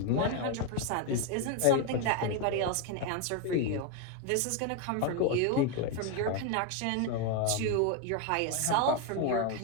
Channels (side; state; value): both; different; correlation 0.01